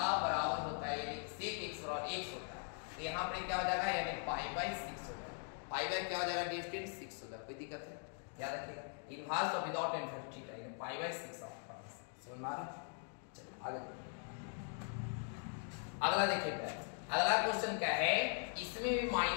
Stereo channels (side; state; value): right; silent; 50 dB below the other